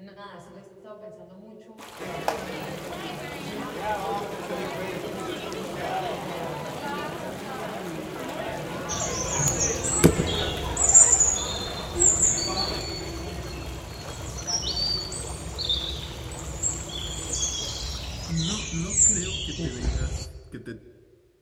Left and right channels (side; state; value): both; identical; correlation 1.00